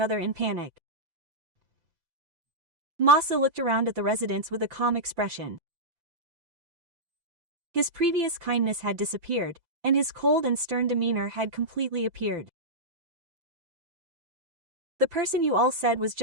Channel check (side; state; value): left; late; 5.9 ms